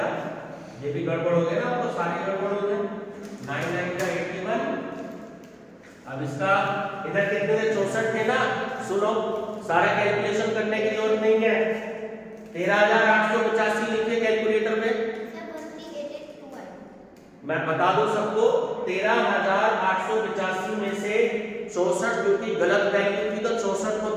ये भी गड़बड़ हो गया ना, तो सारी गड़बड़ हो गए। 9 का 81। अब इसका इधर कितने थे 64 थे ना। सुनो, सारा कैलकुलेशन करने की जरूरत नहीं है। 13,885 लिखिए कैलकुलेटर में। मैं बता दूं सबको, 13,885 में से 64 क्योंकि गलत वैल्यू थी तो 64 को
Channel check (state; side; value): identical; both; correlation 1.00